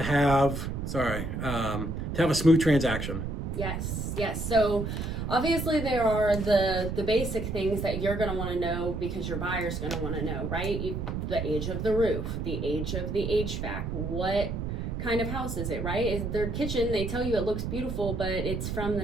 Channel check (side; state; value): right; noise; rumble, 3 dB below the sound